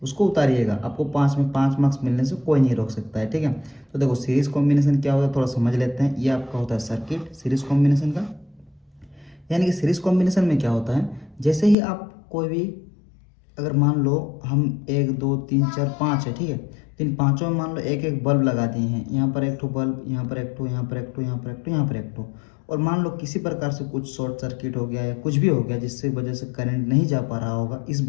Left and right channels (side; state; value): right; drops out; at 11.8 s